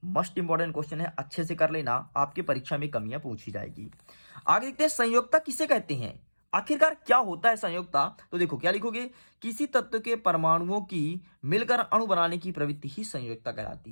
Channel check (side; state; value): both; inverted; correlation -1.00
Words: मोस्ट इंपॉर्टेंट क्वेश्चन है, अच्छे से कर लेना, आपकी परीक्षा में कमियां पूछी जाएगी। आगे देखते हैं, संयोजकता किसे कहते हैं, आखिरकार क्या होता है संयोजकता। तो देखो क्या लिखोगे, किसी तत्व के परमाणुओं की मिलकर अणु बनाने की प्रवृत्ति ही संयोजकता कहलाती